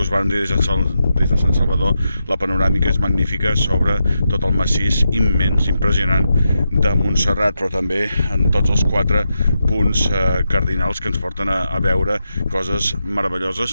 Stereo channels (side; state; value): both; inverted; correlation -0.86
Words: us vam dir des de Sant Salvador, la panoràmica és magnífica sobre tot el massís immens, impressionant de Montserrat, però també en tots els 4 punts cardinals que ens porten a veure coses